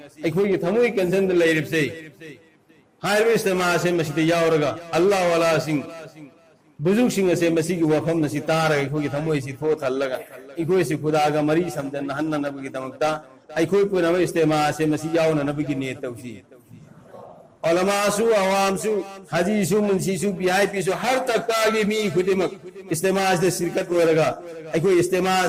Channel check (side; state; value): both; identical; correlation 1.00